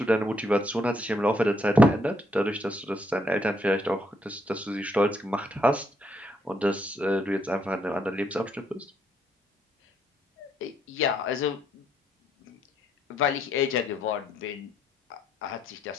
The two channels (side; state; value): both; normal; correlation 0.73